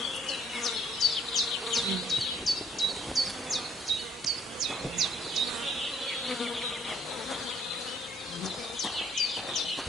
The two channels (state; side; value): normal; both; correlation 0.64